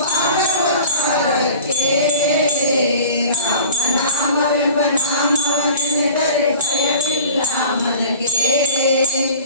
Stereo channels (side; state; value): both; inverted; correlation -0.43